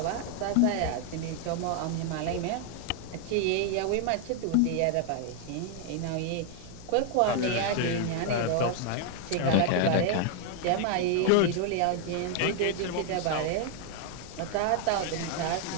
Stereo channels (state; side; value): different; both; correlation 0.00